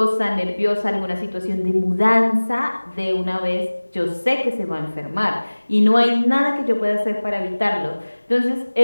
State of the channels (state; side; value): inverted; both; correlation -1.00